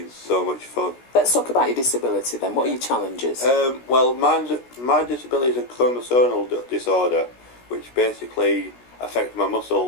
so much fun. Let's talk about your disability then. What are your challenges? Well, my disability is a chromosomal disorder, which basically affects my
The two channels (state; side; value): late; right; 16 ms